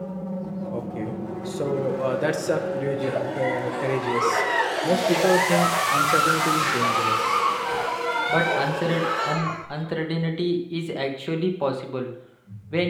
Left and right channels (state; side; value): identical; both; correlation 1.00